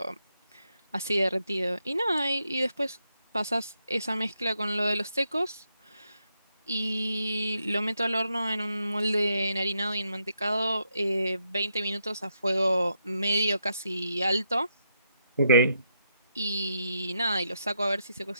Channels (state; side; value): inverted; both; correlation -0.80